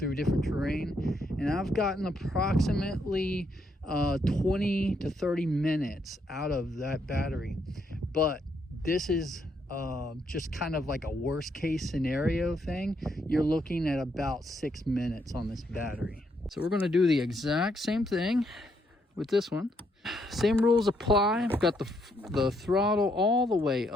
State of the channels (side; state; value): both; normal; correlation 0.75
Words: different terrain. And I've gotten approximately 20 to 30 minutes out of that battery. But this is just kind of like a worst case scenario thing. You're looking at about 6 minutes on this battery. So we're going to do the exact same thing with this one. Same rules apply. I've got the throttle all the way